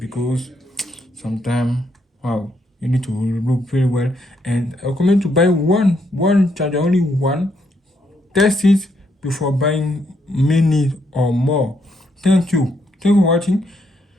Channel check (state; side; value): normal; both; correlation 0.75